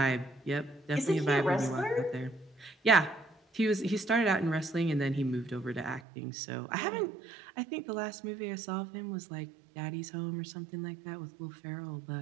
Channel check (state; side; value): drops out; left; at 6.0 s